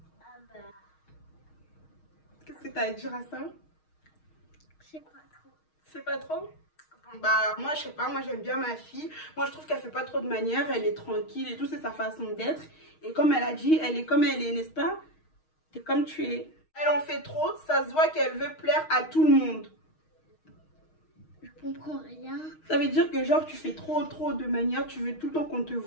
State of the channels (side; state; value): right; late; 6.4 ms